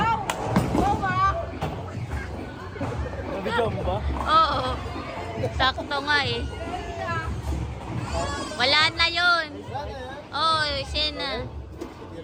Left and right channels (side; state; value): both; identical; correlation 1.00